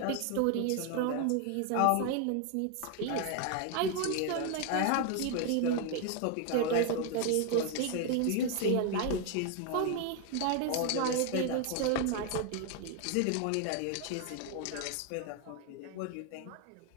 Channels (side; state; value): both; different; correlation 0.01